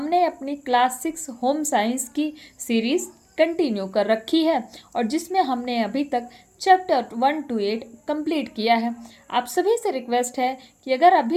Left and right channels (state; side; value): identical; both; correlation 1.00